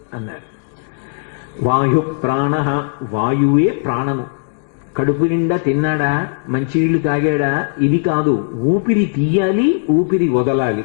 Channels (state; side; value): silent; right; digital silence